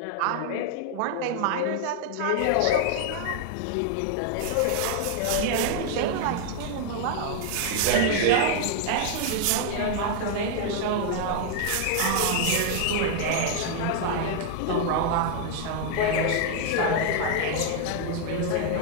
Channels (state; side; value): different; both; correlation 0.00